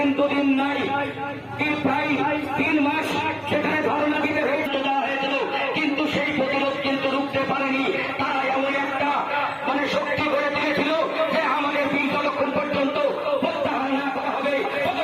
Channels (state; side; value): identical; both; correlation 1.00